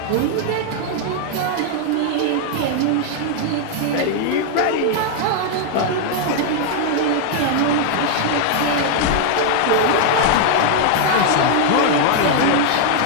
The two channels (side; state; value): both; different; correlation 0.00